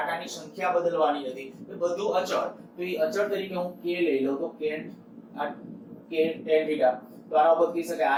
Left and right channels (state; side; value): identical; both; correlation 1.00